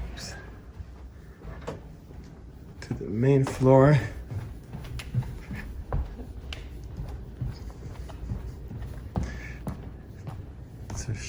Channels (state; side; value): identical; both; correlation 1.00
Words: to the main floor. To